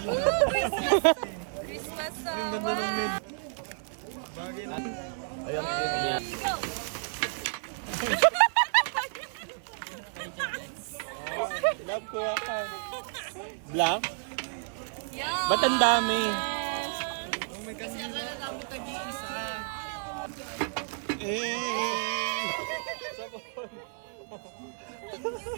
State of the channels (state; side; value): silent; left; 57 dB below the other